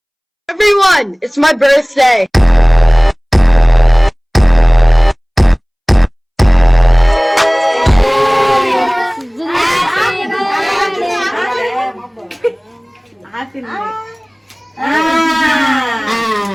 Everyone, it's my birthday.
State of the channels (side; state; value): both; identical; correlation 1.00